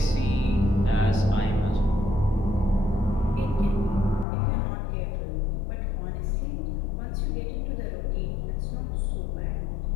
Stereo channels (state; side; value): drops out; right; at 4.2 s